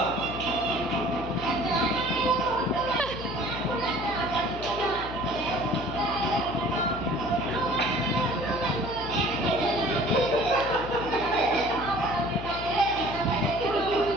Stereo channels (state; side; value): noise; left; hum, 10 dB below the sound